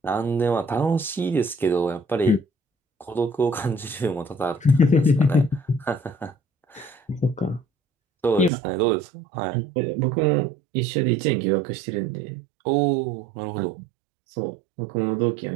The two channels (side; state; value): left; drops out; at 8.5 s